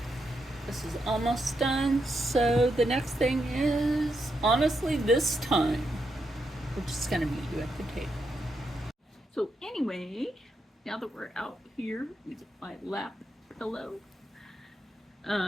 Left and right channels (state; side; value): normal; both; correlation 0.82